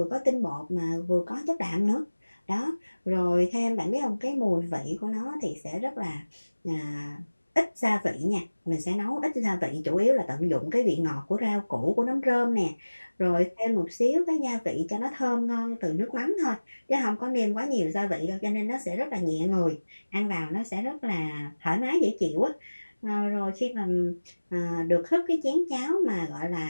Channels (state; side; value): inverted; both; correlation -1.00